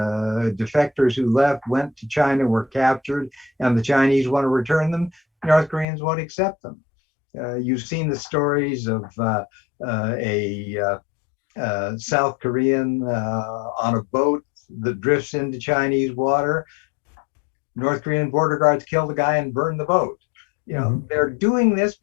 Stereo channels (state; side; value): drops out; right; at 5.9 s